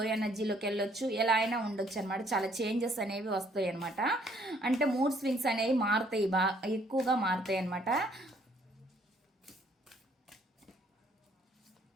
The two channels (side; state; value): both; normal; correlation 0.64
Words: ఎనర్జీలోకి వెళ్ళొచ్చు, ఎలా అయినా ఉండొచ్చు అనమాట. చాలా చేంజెస్ అనేవి వస్తాయి అనమాట. అంటే మూడ్ స్వింగ్స్ అనేవి మారుతాయి, ఎక్కువగా మారుతాయి అనమాట.